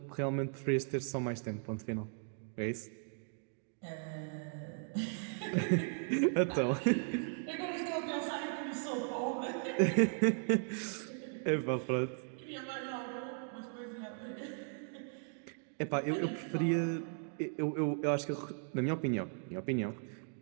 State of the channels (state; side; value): silent; left; 53 dB below the other